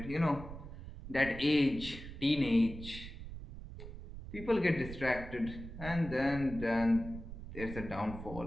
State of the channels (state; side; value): noise; right; rumble, 11 dB below the sound